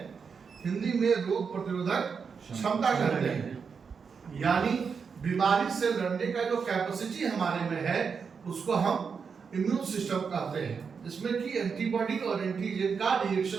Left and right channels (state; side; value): quieter; left; 5.9 dB